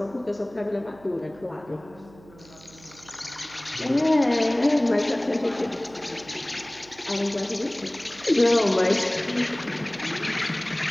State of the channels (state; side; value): noise; right; hum, 23 dB below the sound